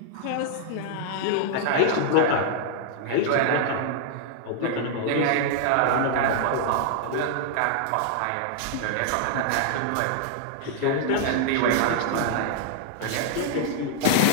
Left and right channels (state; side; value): different; both; correlation -0.01